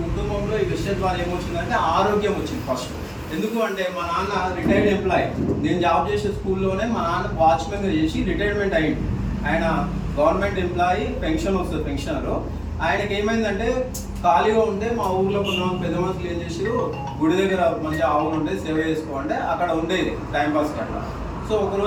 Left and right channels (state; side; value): identical; both; correlation 1.00